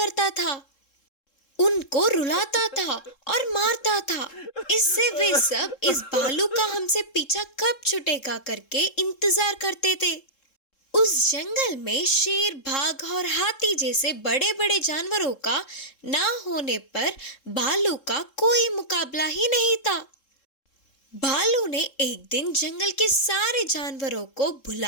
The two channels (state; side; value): late; right; 3.7 ms